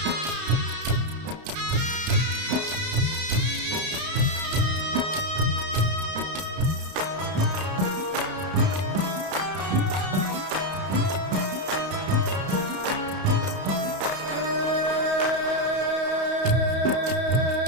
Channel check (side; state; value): left; late; 31 ms